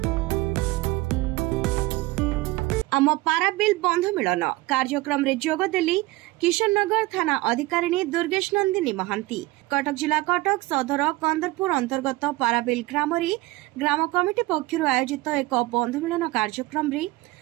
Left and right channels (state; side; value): quieter; left; 20.3 dB